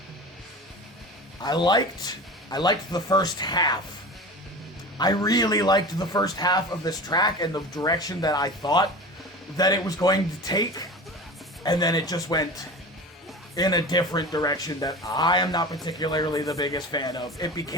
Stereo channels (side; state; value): both; normal; correlation 0.33